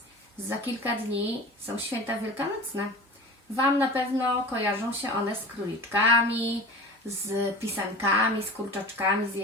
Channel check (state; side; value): normal; both; correlation 0.36